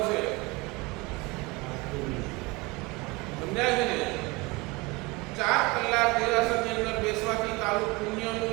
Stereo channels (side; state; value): left; quieter; 24.8 dB